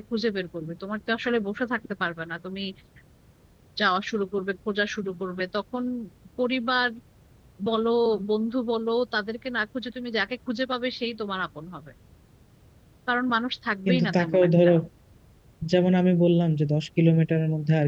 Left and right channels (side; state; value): both; identical; correlation 1.00